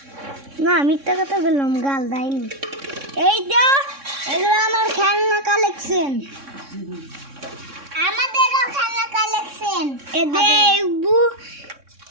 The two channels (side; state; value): left; late; 3.6 ms